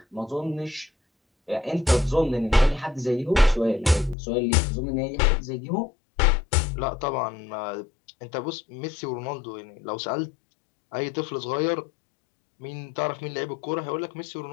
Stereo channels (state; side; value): drops out; right; at 4.2 s